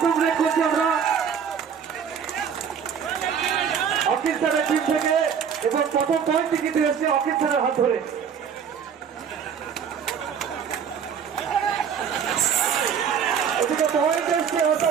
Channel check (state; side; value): quieter; left; 7.3 dB